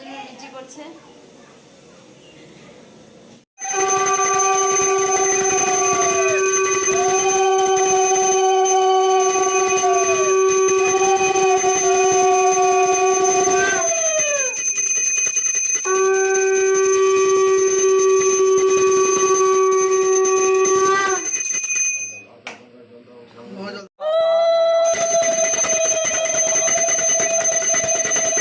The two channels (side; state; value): both; identical; correlation 1.00